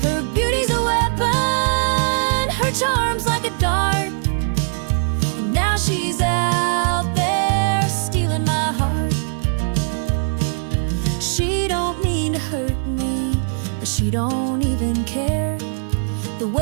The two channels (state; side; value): silent; left; 65 dB below the other